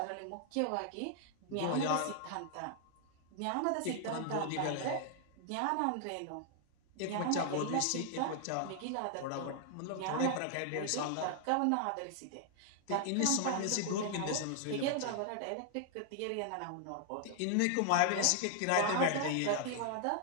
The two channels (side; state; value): both; different; correlation 0.00